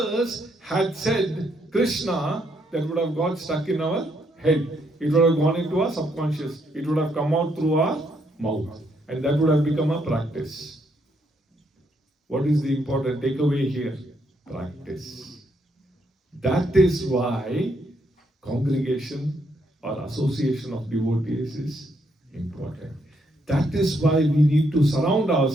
had said Krishna, that would have got stuck in our head. It would have gone into our subconscious. It would have come out through our mouth. And that would have become a practice. What is the important takeaway here? Practice. That is why congregation or association of devotees is important. That is why we need to surround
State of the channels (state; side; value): normal; both; correlation 0.75